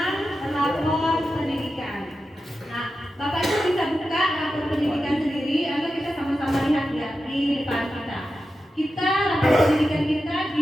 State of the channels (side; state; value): both; normal; correlation 0.91